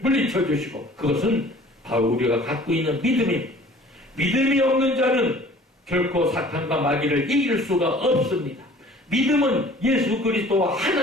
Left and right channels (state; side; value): normal; both; correlation 0.50